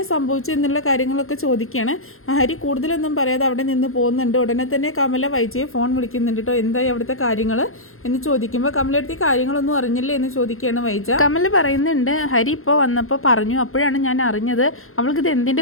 സംഭവിച്ചു എന്നുള്ള കാര്യങ്ങളൊക്കെ ചോദിക്കുകയാണ്. ഹരി കൂടുതലൊന്നും പറയാതെ അവിടെ നിന്ന് പോകുന്നുണ്ട്. ഉടനെ തന്നെ കമല വൈജയെ ഫോൺ വിളിക്കുന്നുണ്ട് കേട്ടോ. എന്തായി അവിടുത്തെ കാര്യങ്ങൾ എന്ന് ചോദിക്കുമ്പോൾ കമലടുത്ത് കാര്യങ്ങളൊന്നും അറിഞ്ഞില്ലേ എന്ന് ചോദിക്കുകയാണ് വൈജ. കമല പറയുന്നുണ്ട്, ഹരി ഇപ്പോൾ വന്നപ്പോൾ പറഞ്ഞു, അപ്പോഴാണ് ഞാൻ അറിഞ്ഞത് അവൾക്കിത്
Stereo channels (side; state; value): right; late; 0.61 ms